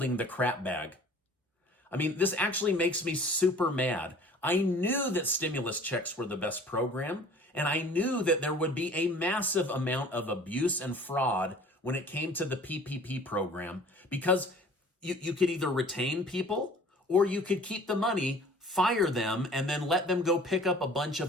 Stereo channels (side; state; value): both; normal; correlation 0.48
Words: the crap bag. I mean, this actually makes me super mad. I knew that stimulus checks were the best program, and I knew that there would be a massive amount of abuse and fraud when it came to the PPP program, because you could either retain people or you could keep the money, fire them, and then let them go pick up a bunch